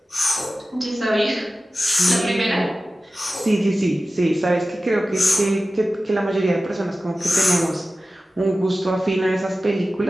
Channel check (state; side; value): normal; both; correlation 0.95